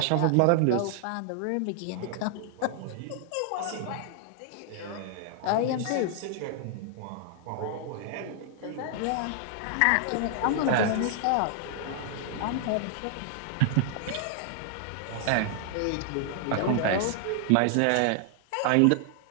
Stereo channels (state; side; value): different; both; correlation 0.00